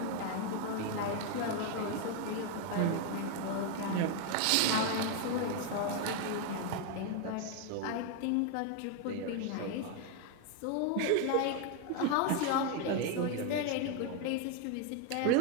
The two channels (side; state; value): both; different; correlation 0.01